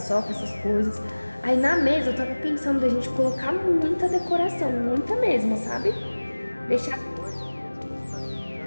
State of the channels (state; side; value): inverted; both; correlation -1.00